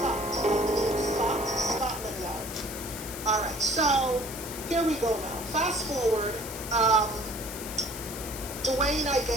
Scotland Yard. All right, so here we go now. Fast forward, Dwayne, I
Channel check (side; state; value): left; noise; hiss, 10 dB below the sound